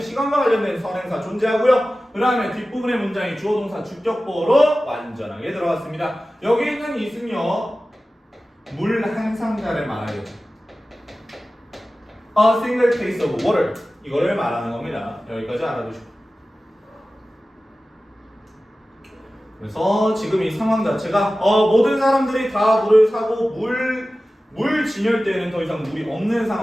관련된 선행사 존재하고요. 그 다음에 뒷부분의 문장이 주어동사 주격보로 완전하게 들어갔습니다. 여기 있는 is는요, 물 한 상자를 말하겠죠. A single case of water. 이거를 말하는 겁니다. 여기까지 알아두시고. 그래서 지금 이 상황 자체가 모든 사람들이 다 물을 사고 물 진열대에는 더 이상 물이 없는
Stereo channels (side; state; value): both; normal; correlation 0.96